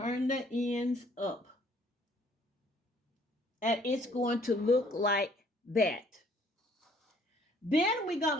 the ends up. And it's going to look like that. Then we're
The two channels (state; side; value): normal; both; correlation 0.61